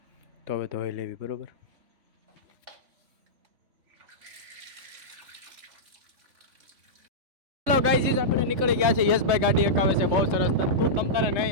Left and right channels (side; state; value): left; late; 3.5 ms